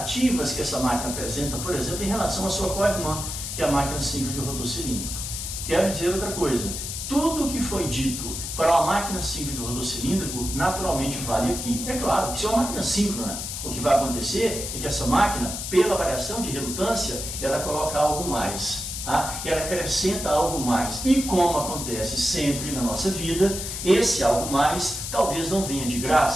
que essa máquina apresenta, por exemplo, em relação à sua co-irmã, que é a máquina simples de rotor cilíndrico. Quero dizer outra coisa, tudo o que foi dito para uma máquina simples de rotor cilíndrico, naturalmente vale aqui. É claro, que se é uma máquina síncrona, o que vai acontecer é que essa máquina, pela variação de relutância, ela coloca algo mais, tá? Ela acrescenta algo mais. E como acontece sempre na nossa vida, esse algo mais talvez não venha de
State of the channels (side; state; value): left; noise; hiss, 5 dB below the sound